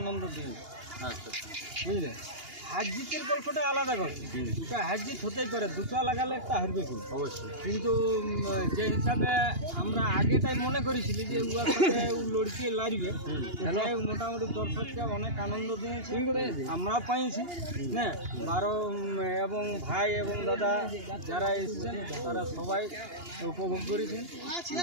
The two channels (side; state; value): left; late; 2.8 ms